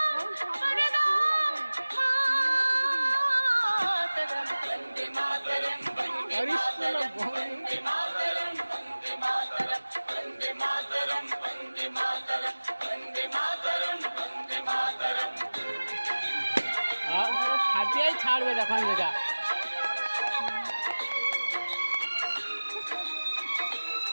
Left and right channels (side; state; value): both; inverted; correlation -1.00